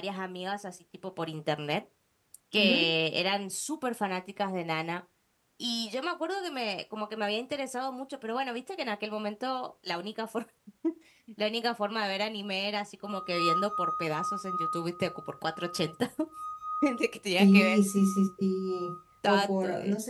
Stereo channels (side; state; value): both; identical; correlation 1.00